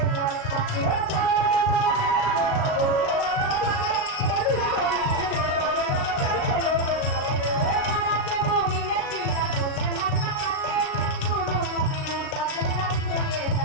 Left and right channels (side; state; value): right; late; 37 ms